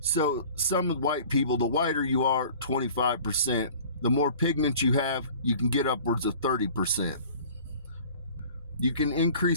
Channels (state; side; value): inverted; both; correlation -0.46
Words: some white people, the whiter you are, 25%, the more pigment you have, you can get upwards of 30%. You can